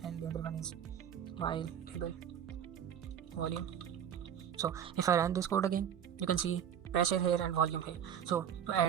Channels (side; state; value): left; quieter; 9.0 dB